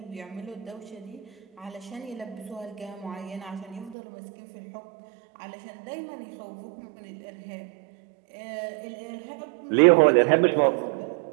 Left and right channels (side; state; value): left; drops out; at 4.0 s